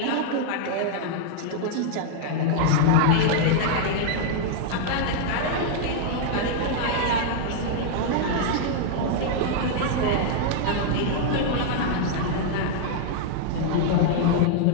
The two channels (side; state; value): both; different; correlation -0.01